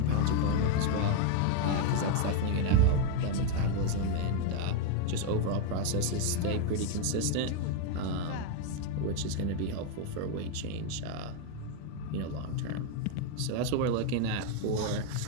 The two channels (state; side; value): different; both; correlation 0.01